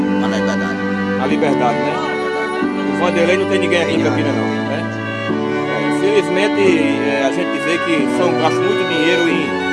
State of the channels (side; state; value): both; identical; correlation 1.00